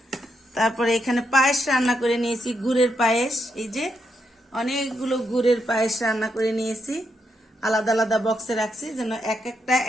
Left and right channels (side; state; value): both; normal; correlation 0.81